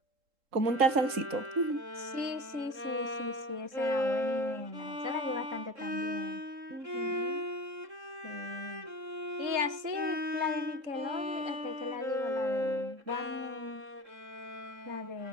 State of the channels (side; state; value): left; late; 3.7 ms